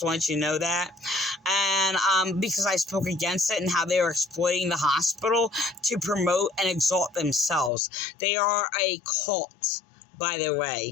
let you know that. And because I spoke against it and how they are exploiting the hospital to promote and exalt themselves. They are a cult, by the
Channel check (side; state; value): right; drops out; at 7.7 s